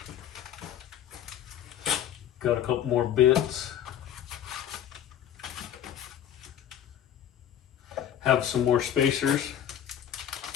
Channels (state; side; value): quieter; right; 10.3 dB